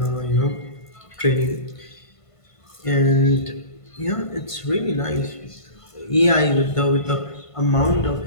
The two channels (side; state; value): right; late; 1.5 ms